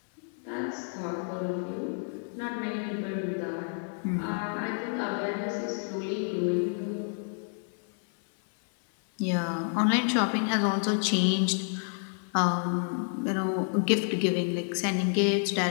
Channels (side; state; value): right; silent; 58 dB below the other